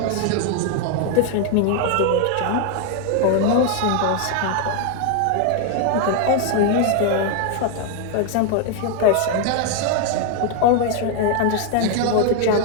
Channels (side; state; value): both; different; correlation 0.01